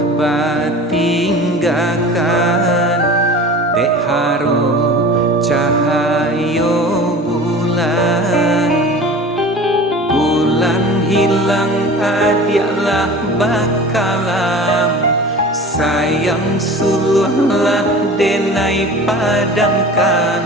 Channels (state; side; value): normal; both; correlation 0.39